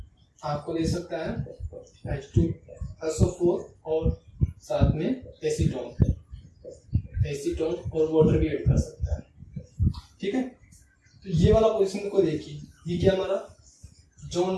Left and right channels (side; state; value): both; identical; correlation 1.00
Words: आपको दे सकता है H2SO4 और साथ में एसीटोन और वाटर भी ऐड कर सकता है। ठीक है, तो ये वाला पोजीशन को देखिए, ये क्या हमारा